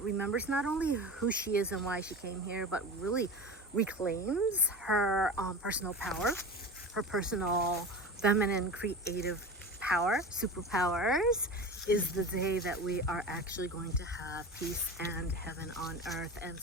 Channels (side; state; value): both; normal; correlation 0.30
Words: remembers not only who she is and why she came here, but really reclaims her personal power, her personal feminine creative power, superpowers, is the day that we are actually going to have peace and heaven on earth. And